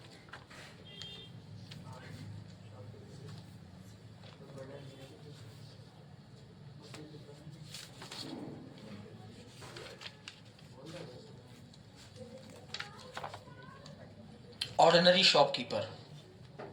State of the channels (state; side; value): identical; both; correlation 1.00